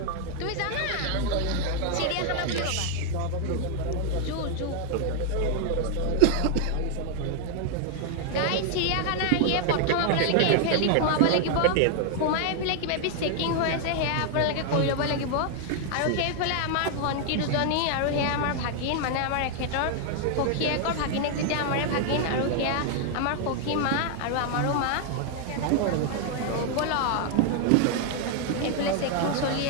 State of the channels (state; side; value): different; both; correlation 0.00